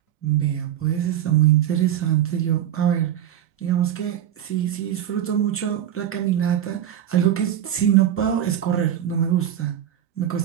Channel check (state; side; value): quieter; left; 10.7 dB